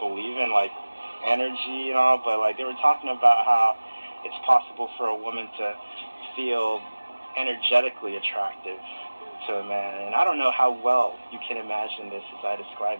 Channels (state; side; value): inverted; both; correlation -1.00